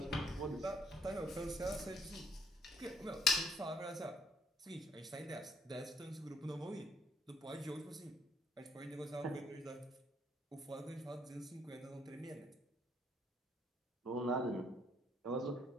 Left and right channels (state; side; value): normal; both; correlation 0.67